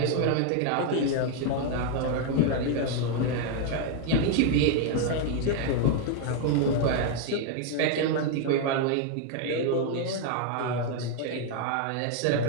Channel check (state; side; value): different; both; correlation 0.00